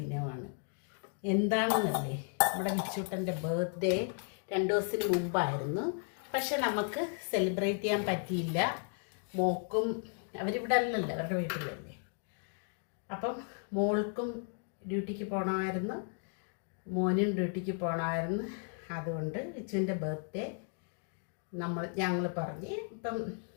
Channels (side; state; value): right; silent; 55 dB below the other